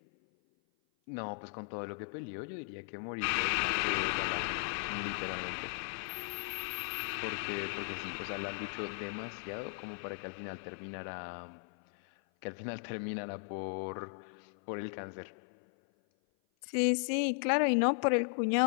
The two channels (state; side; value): silent; right; 53 dB below the other